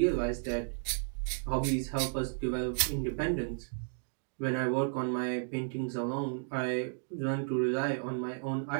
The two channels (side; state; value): left; silent; digital silence